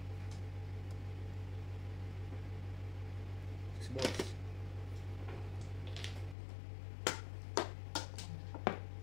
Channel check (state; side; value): drops out; right; at 6.4 s